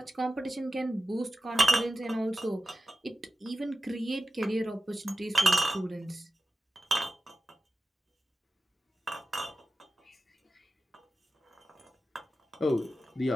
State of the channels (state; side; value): normal; both; correlation 0.94